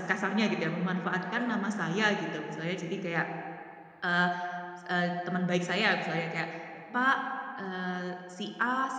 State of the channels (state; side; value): identical; both; correlation 1.00